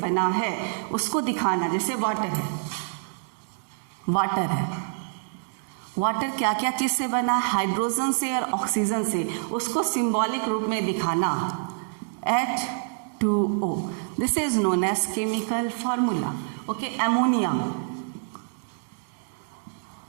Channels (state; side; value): silent; left; digital silence